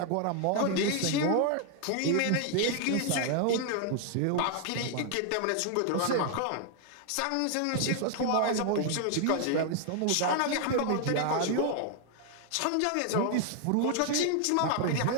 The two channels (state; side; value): different; both; correlation 0.00